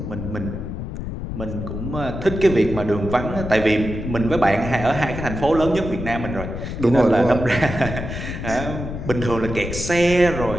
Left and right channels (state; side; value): noise; left; rumble, 6 dB below the sound